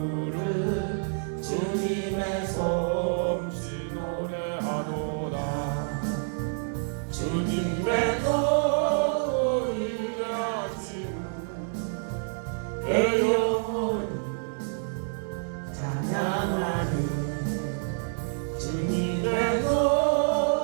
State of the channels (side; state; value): left; silent; digital silence